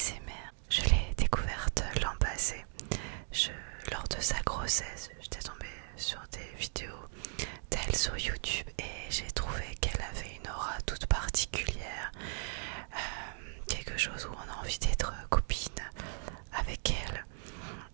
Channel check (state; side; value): silent; left; 53 dB below the other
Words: Je l'ai découverte l'an passé. Lors de sa grossesse, j'étais tombée sur des vidéos d'elle sur YouTube et j'ai trouvé qu'elle avait une aura toute particulière. Quelque chose où on a envie d'être copine avec elle.